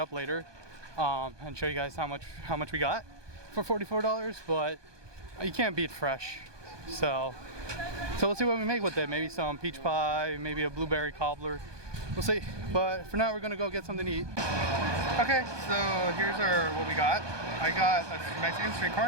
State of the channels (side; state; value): left; late; 1.2 ms